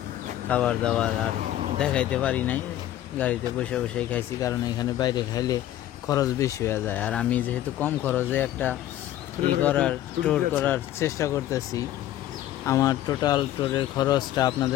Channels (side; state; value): right; quieter; 13.0 dB